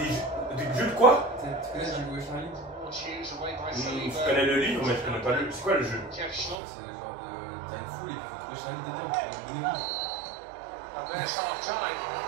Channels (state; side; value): drops out; left; at 6.6 s